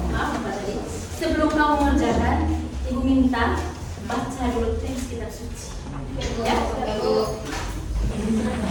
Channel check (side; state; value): both; identical; correlation 1.00